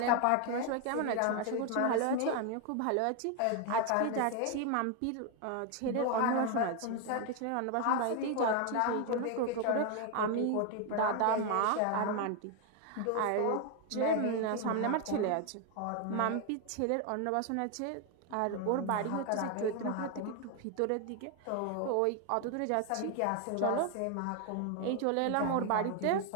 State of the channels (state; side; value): different; both; correlation 0.01